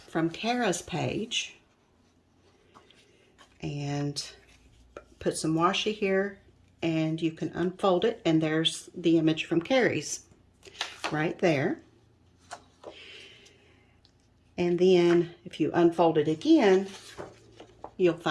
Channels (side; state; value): both; identical; correlation 1.00